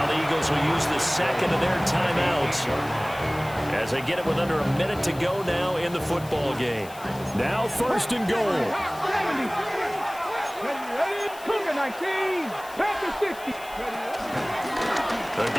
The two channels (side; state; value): left; noise; hiss, 19 dB below the sound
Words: the Eagles will use the second of their timeouts as they get it with under a minute to go now in the football game. Now first and goal. 70. Cougar 19. Panther 60. The